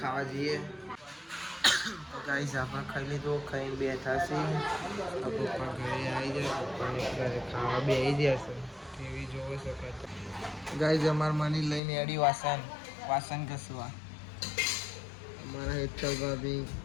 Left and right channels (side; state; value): right; drops out; at 11.8 s